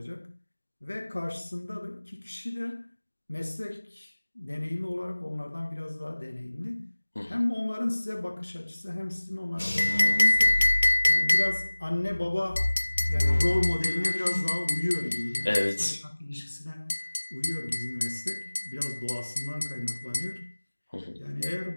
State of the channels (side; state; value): both; inverted; correlation -1.00